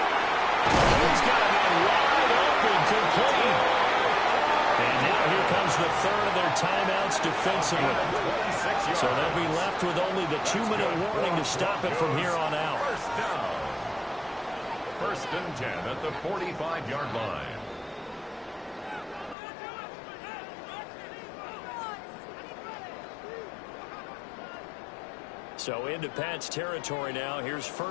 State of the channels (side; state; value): right; drops out; at 19.4 s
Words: He's got a man wide open, complete. And now here comes the third of their timeouts defensively. So they'll be left with only the 2-minute warning to stop it from here on out. First down. First and 10 at the 45-yard line. So into Pat's territory now. Here's